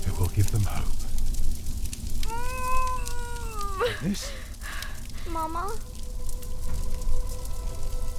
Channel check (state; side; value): identical; both; correlation 1.00